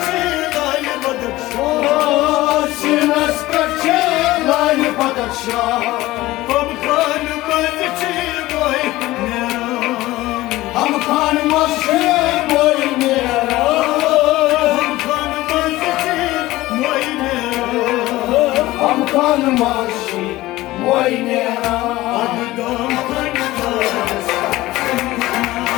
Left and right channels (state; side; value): quieter; right; 17.7 dB